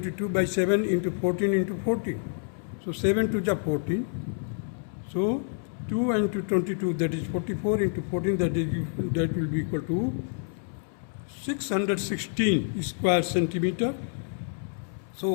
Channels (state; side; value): silent; right; 59 dB below the other